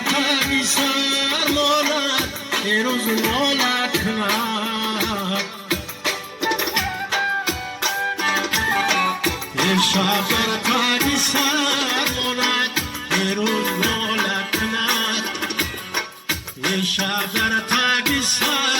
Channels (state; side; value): identical; both; correlation 1.00